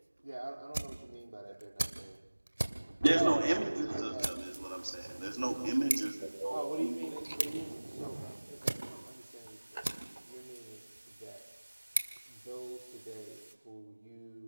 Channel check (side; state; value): both; inverted; correlation -1.00